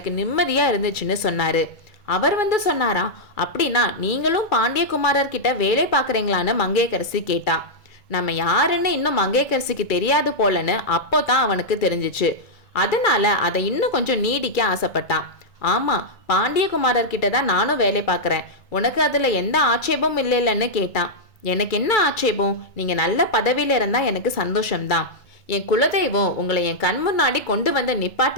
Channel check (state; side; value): late; right; 2.3 ms